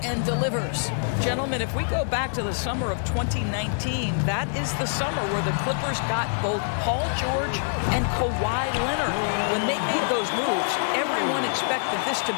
and delivers. Gentlemen, if we go back to the summer of 2019, that is the summer where the Clippers got both Paul George and Kawhi Leonard. When they made those moves, everyone expected this to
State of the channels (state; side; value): silent; right; digital silence